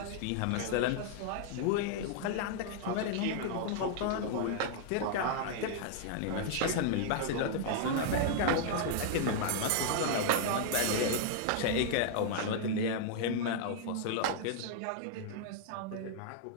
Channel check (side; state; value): both; different; correlation -0.01